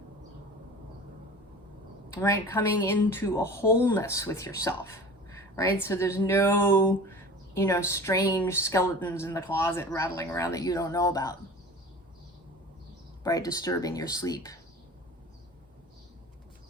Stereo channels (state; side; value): normal; both; correlation 0.39